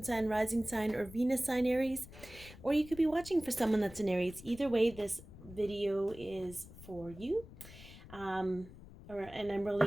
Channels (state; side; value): noise; left; rumble, 17 dB below the sound